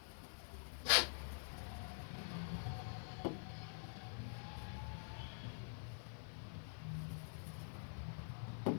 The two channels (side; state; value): right; silent; digital silence